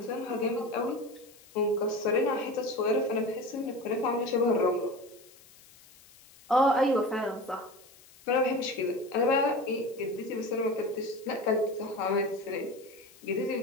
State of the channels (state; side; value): noise; left; hiss, 25 dB below the sound